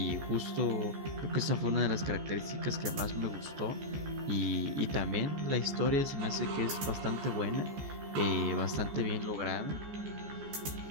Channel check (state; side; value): late; left; 14 ms